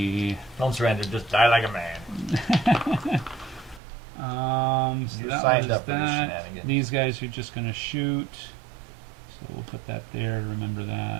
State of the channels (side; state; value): left; drops out; at 3.8 s